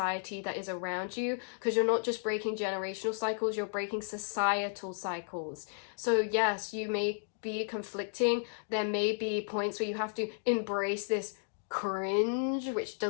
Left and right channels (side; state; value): right; silent; digital silence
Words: that is around you, because you're not just breaking generational cycles, you're breaking societal cycles. So yes, you may be conflicting. There may be points where you have to embrace this cringe, which